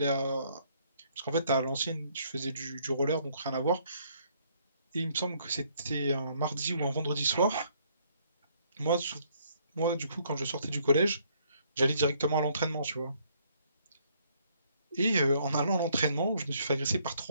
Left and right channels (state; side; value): inverted; both; correlation -0.67